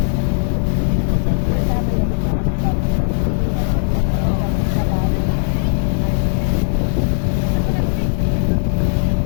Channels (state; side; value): silent; right; digital silence